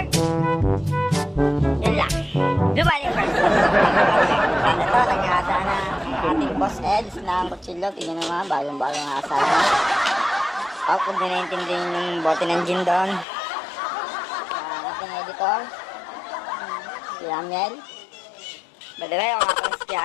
Yun lang. Blue Marlin versus Black Panther. Sana to, nag-aasa na ang ating boss Eds ng kutsilyo. Tingnan naman, balong-balong asa na. Kung di naintindihan yung bote ng gin doon. Ang ating editor, si Amiel. By the way, ako nga pala si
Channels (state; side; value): drops out; right; at 13.2 s